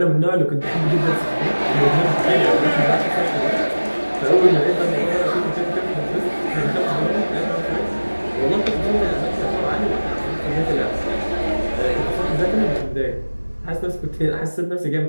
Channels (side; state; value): both; inverted; correlation -1.00